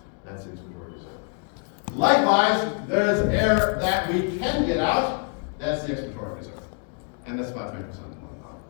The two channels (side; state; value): right; quieter; 39.7 dB